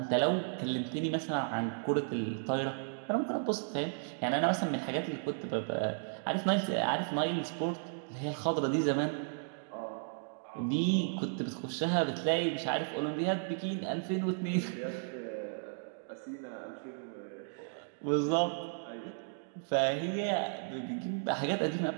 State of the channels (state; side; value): silent; left; digital silence